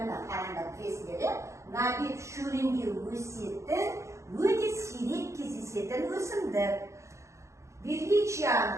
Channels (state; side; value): late; left; 0.14 ms